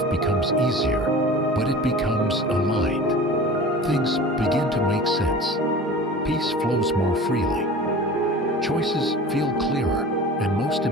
becomes easier, but it becomes aligned. Things begin to make sense. Peace flows more freely. Choices feel clearer, and most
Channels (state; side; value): normal; both; correlation 0.38